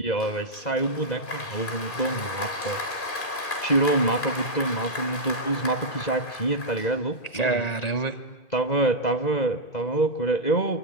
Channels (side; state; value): right; late; 2.5 ms